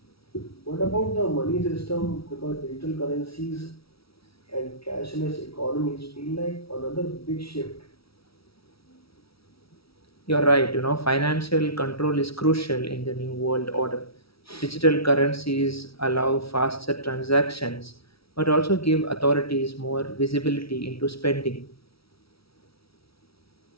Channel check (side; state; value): right; late; 0.76 ms